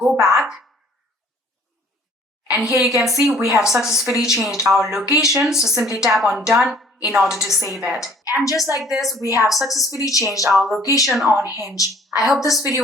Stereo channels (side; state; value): both; normal; correlation 0.56